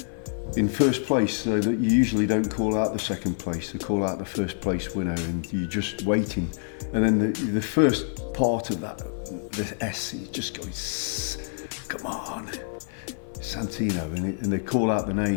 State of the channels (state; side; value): silent; right; 58 dB below the other